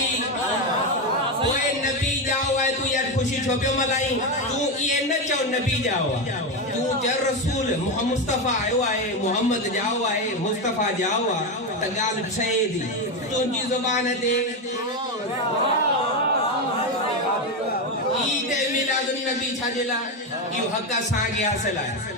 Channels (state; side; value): normal; both; correlation 0.12